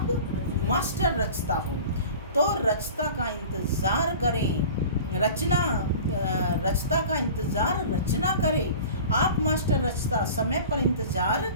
मास्टर रचता हो, तो रचता का इंतज़ार करें। रचता का इंतज़ार रचना करे। आप मास्टर रचता, समय पर इंतज़ार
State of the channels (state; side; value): inverted; both; correlation -0.40